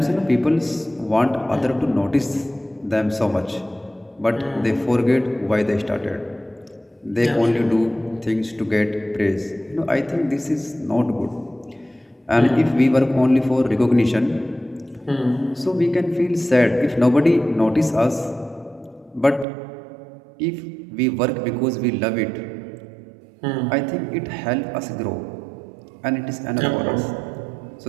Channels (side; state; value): left; drops out; at 19.5 s